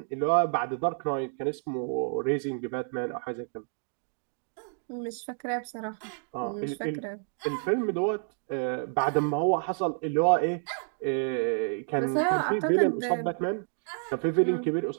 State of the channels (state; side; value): silent; left; 57 dB below the other